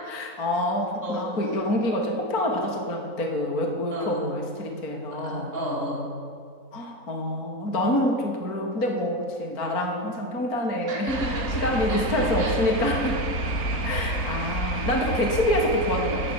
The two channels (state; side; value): late; right; 3.9 ms